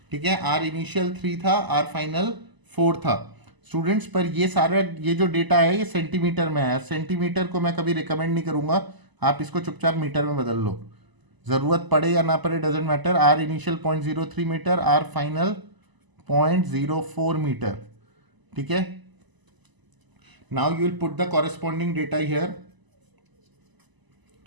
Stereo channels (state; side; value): late; left; 1.0 ms